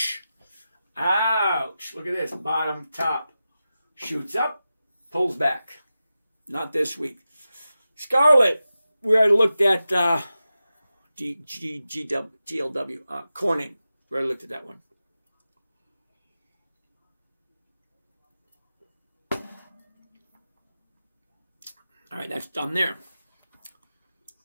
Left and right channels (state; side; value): inverted; both; correlation -0.92